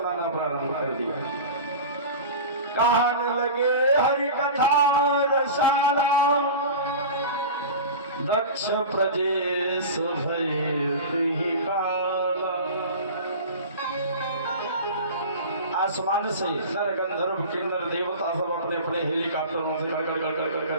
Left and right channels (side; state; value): both; inverted; correlation -0.32